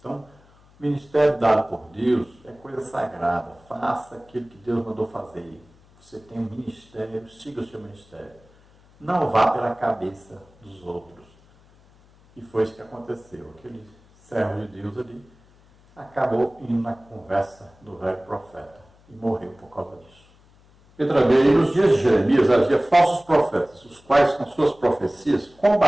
o ministério dado por Deus é coisa sagrada. Faça aquilo que Deus mandou fazer. Você tem um ministério, siga o seu ministério. Não vá pela cabeça dos outros. E foi isso que aconteceu. Aquele servo de Deus ali acabou indo na conversa do velho profeta e morreu por causa disso. Letra B. E nos dias de Jeremias havia falsos profetas, os quais com suas profecias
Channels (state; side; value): noise; left; hum, 29 dB below the sound